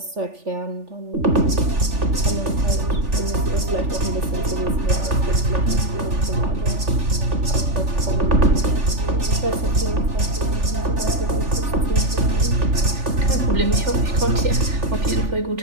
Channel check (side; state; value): left; late; 3.4 ms